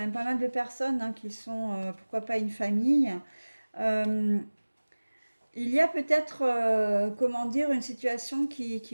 pas mal de personnes hein, qui sont, pourquoi pas une famille. Euh, il y a peut-être, comment dire, une situation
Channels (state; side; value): inverted; both; correlation -1.00